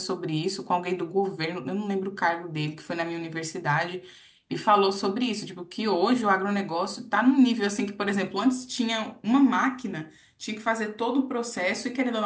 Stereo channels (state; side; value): identical; both; correlation 1.00